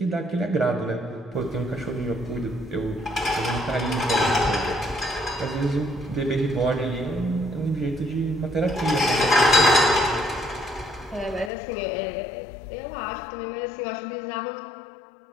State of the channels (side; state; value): right; drops out; at 11.5 s